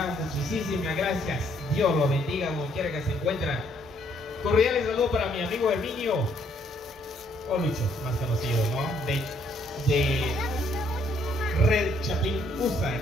muchísimas gracias. Dios los bendiga donde quiera que se encuentren. Cordiales saludos para mi amigo Herminio. o Lucho, más conocido, ¿no? De Red Chapín USA.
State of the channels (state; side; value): normal; both; correlation 0.68